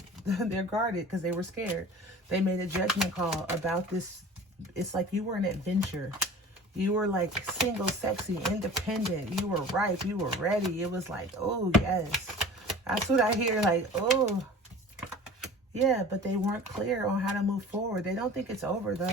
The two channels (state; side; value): normal; both; correlation 0.41